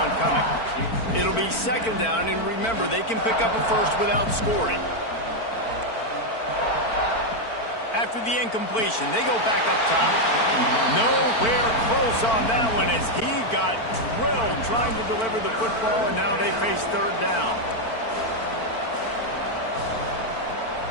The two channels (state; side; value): late; right; 4.5 ms